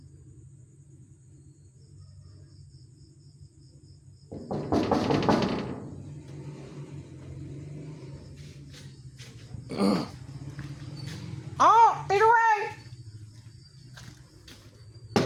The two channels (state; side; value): identical; both; correlation 1.00